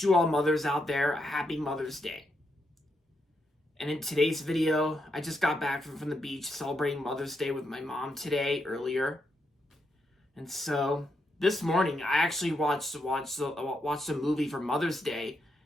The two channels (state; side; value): normal; both; correlation 0.81